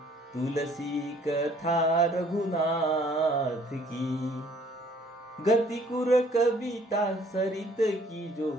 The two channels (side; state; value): both; normal; correlation 0.59